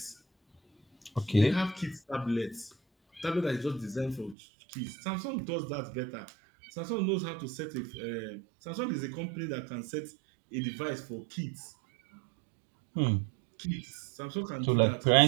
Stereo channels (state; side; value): drops out; left; at 4.4 s